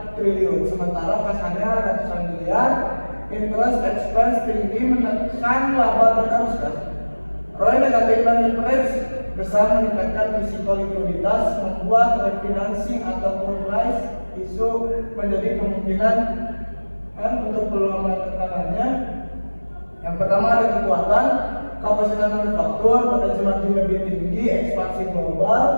triliun, sementara kasarnya ratusan miliar. Interest expense tinggi menekan laba dan arus kas. ROI negatif dan leverage besar meningkatkan risiko likuiditas, membuat refinancing ataupun price issue menjadi kemungkinan untuk peluang tekanannya. Yang pertama ada kekuatan, kapasitas manufaktur, potensi margin lebih tinggi, ekspansi global,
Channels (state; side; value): inverted; both; correlation -1.00